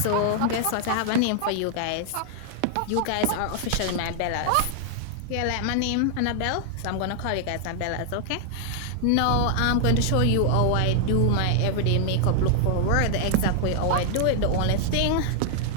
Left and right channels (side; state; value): both; different; correlation 0.00